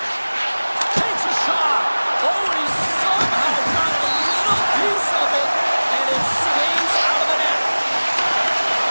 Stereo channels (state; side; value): inverted; both; correlation -1.00